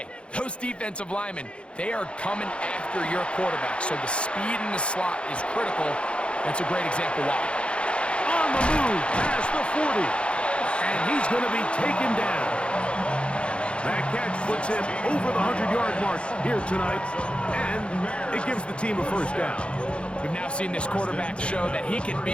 Those defensive linemen, they are coming after your quarterback. So the speed in the slot is critical. That's a great example why. On the move past the 40. And he's going to be taken down. That catch puts him over the 100-yard mark here tonight, and it gives the team a first down. We've now seen this quarterback show that he can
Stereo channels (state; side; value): late; right; 0.058 ms